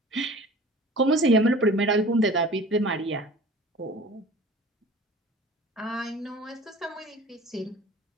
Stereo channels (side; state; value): both; normal; correlation 0.43